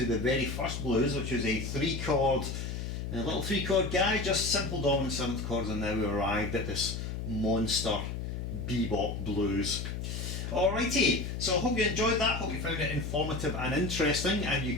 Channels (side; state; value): left; noise; hum, 5 dB below the sound